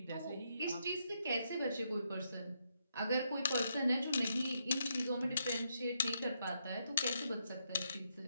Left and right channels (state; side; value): inverted; both; correlation -0.79